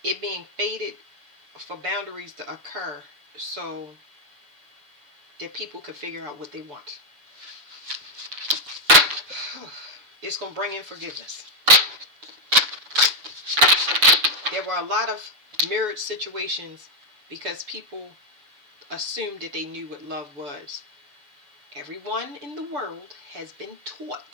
it being faded for boundaries to occur so that people could figure out what they want. It's going to bring in forgiveness. There were a lot of mirrored situations because people assumed that they knew what love was. Everyone in the world has been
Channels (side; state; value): left; late; 6.9 ms